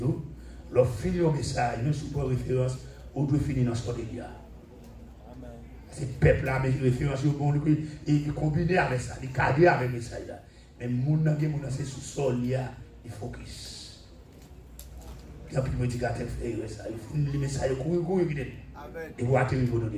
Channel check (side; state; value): both; identical; correlation 1.00